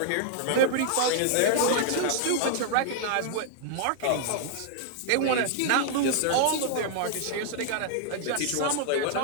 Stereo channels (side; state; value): both; different; correlation -0.01